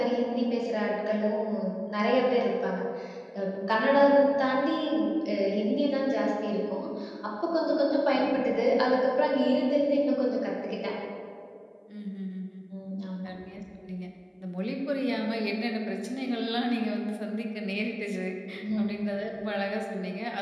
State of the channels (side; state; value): both; identical; correlation 1.00